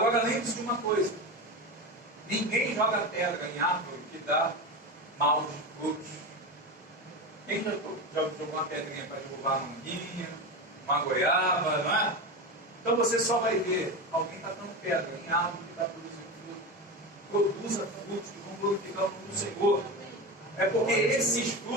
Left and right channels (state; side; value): normal; both; correlation 0.21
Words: lembre-se de uma coisa: ninguém joga pedra em árvore que dá maus frutos. Quem já jogou uma pedrinha para derrubar uma manguinha, uma goiaba, não é? Então você só vai ver alguém tacando pedra em árvore que está produzindo fruto. Produza frutos que vão glorificar o nome do Senhor. É porque esses